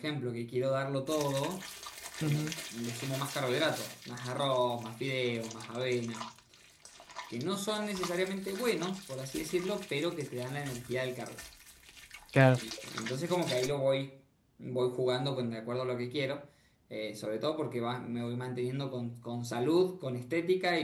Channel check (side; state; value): both; identical; correlation 1.00